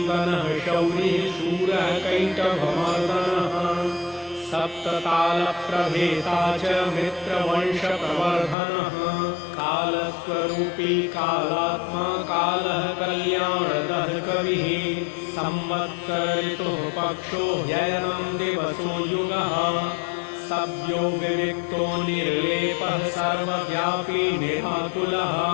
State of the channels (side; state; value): right; drops out; at 8.6 s